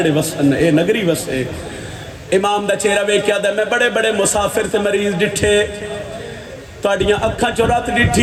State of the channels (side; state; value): both; identical; correlation 1.00